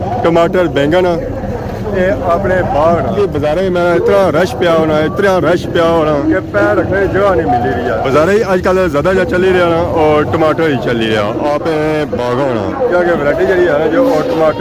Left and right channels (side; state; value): both; identical; correlation 1.00